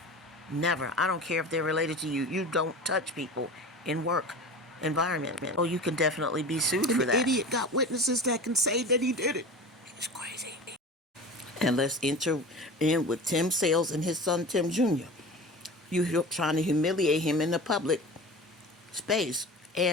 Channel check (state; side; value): normal; both; correlation 0.34